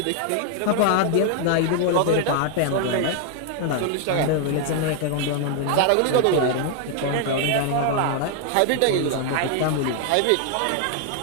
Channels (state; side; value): different; both; correlation 0.00